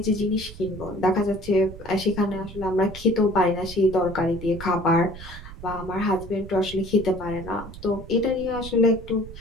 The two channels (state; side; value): noise; right; rumble, 14 dB below the sound